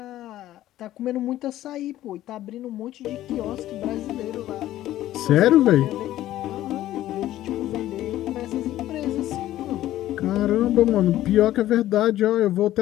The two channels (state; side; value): quieter; right; 13.9 dB